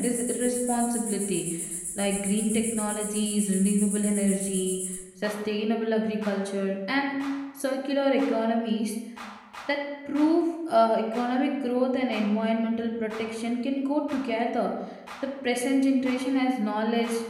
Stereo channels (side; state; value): both; identical; correlation 1.00